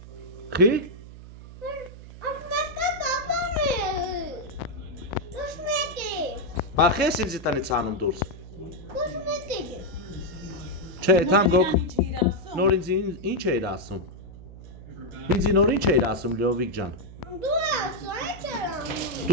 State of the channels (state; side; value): noise; right; hum, 15 dB below the sound